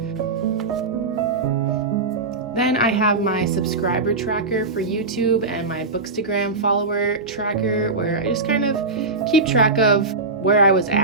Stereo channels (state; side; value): quieter; left; 3.7 dB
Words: Then I have my subscriber tracker for YouTube and my Bookstagram follower tracker, where I just kind of keep track of where I was